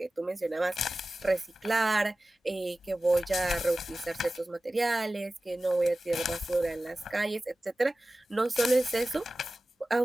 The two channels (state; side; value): normal; both; correlation 0.96